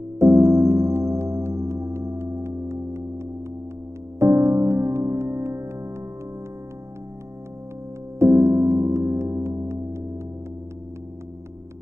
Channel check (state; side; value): late; left; 0.13 ms